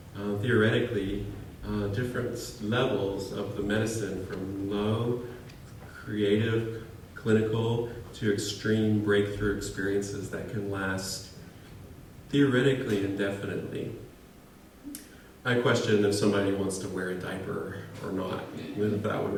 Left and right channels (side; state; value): both; identical; correlation 1.00